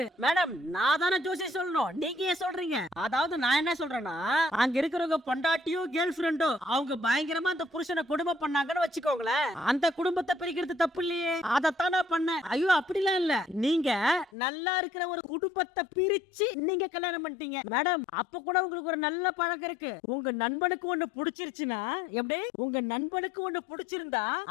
மேடம் நான் தானே ஜோசி சொல்லணும், நீங்க ஏன் சொல்றீங்க? அதாவது நான் என்ன சொல்றேன்னா அங்க இருக்கிறவங்க பொண்டாட்டியோ கேர்ள் ஃபிரெண்டோ அவங்க பயங்கரமா அந்த புருஷனை குடும்பம் பண்ணாங்கன்னு வச்சுக்கோங்களேன், அந்த குடும்பத்தை பிரிக்கிறது தப்பு இல்லையே, அதைத்தான் நான் பண்ணேன். ஐயோ அப்படிலாம் இல்ல, நீங்க நல்லா இருக்கிற ஒரு குடும்பத்தை பிரிச்சு நீங்க கல்யாணம் பண்ணிட்டீங்க. மேடம் அப்ப கூட உங்களுக்கு ஒரு நல்ல பழக்கம் இருக்கு. உங்க நண்பனுக்கு ஒண்ணு பிடிச்சிருச்சுன்னா எப்படி, உங்க நண்பனுக்கு ஒண்ணு பிடிச்சிருந்தா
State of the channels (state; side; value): drops out; right; at 14.3 s